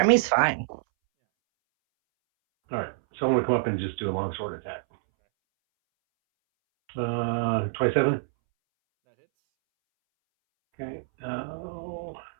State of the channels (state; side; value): silent; left; 61 dB below the other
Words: fine. All right, so I'm gonna come up and just do a longsword attack. Okay. 27. That hits. Okay.